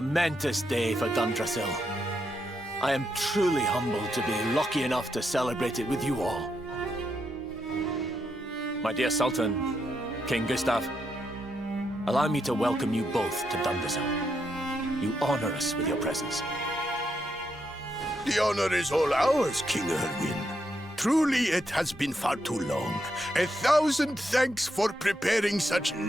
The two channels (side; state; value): both; normal; correlation 0.81